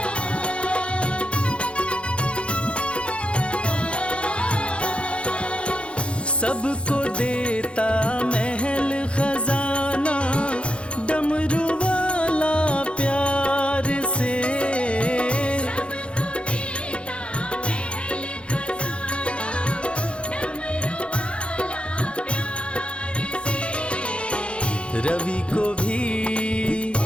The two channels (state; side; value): late; right; 0.059 ms